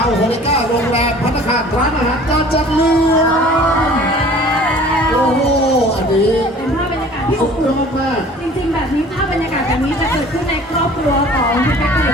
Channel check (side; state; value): both; normal; correlation 0.48